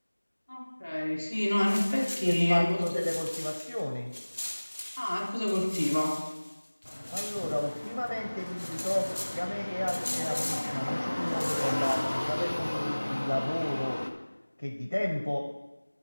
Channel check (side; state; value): both; inverted; correlation -1.00